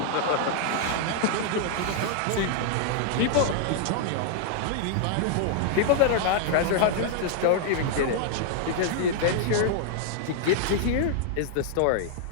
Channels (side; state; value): both; different; correlation -0.01